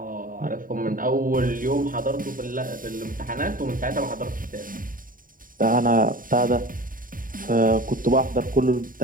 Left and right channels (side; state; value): left; late; 0.40 ms